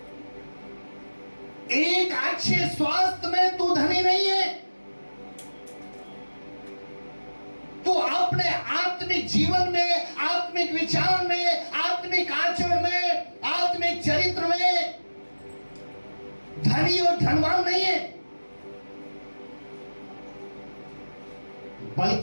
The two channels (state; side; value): inverted; both; correlation -1.00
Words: एक अच्छे स्वास्थ्य में तू धनी नहीं है, अपने आत्मिक जीवन में, आत्मिक विचार में, आत्मिक आचरण में, आत्मिक चरित्र में धनी और धनवान नहीं है,